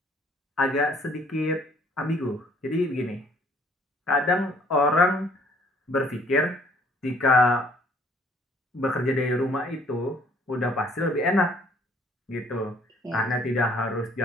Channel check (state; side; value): normal; both; correlation 0.60